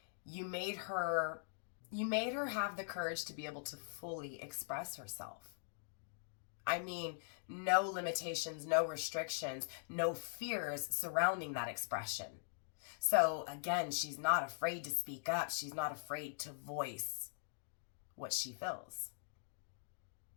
You made her have the courage to be able to fully express herself. I mean, no limitations, no restrictions, no fears surrounding that expression. So again, she's not afraid to speak up. She's not afraid to voice what she feels.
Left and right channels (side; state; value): right; silent; digital silence